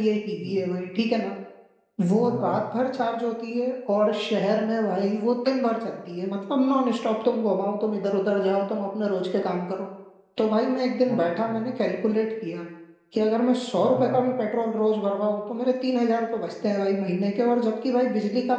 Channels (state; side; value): identical; both; correlation 1.00